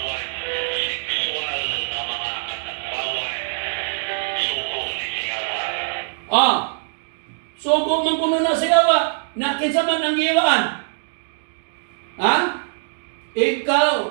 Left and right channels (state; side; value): silent; left; digital silence